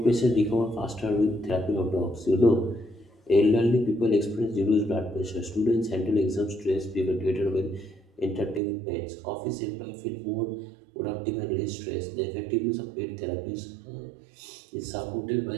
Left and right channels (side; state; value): left; drops out; at 8.6 s